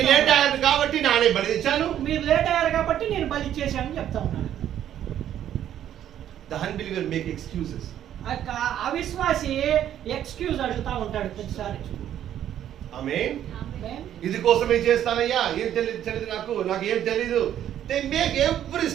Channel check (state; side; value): quieter; left; 10.9 dB